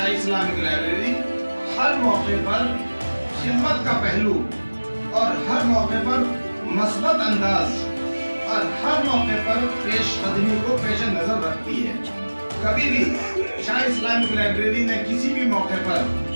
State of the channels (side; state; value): both; inverted; correlation -1.00